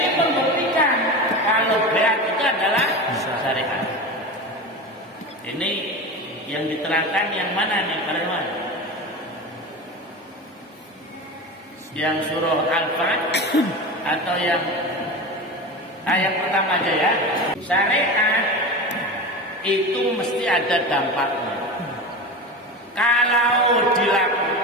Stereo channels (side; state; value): both; normal; correlation 0.26